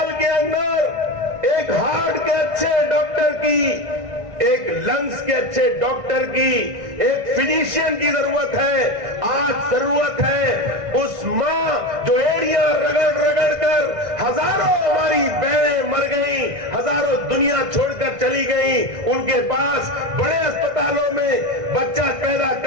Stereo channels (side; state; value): left; late; 1.5 ms